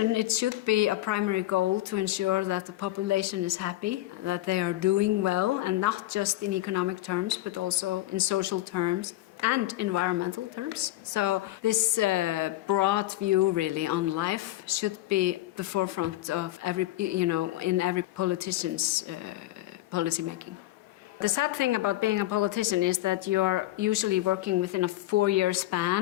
it should be a primary goal to ensure that the population is happy, that they are doing well, and not just in economic terms, but also in social terms and environmental terms. So this broad view really on life should be the forefront of in every politician's policy making. The sad thing about being a politician is that you're usually working within a 4-year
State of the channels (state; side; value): quieter; right; 16.2 dB